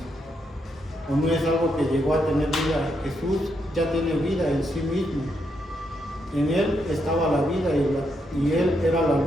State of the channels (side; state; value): both; normal; correlation 0.79